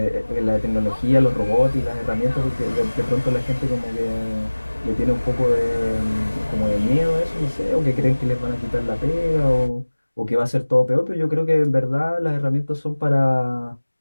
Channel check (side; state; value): both; inverted; correlation -1.00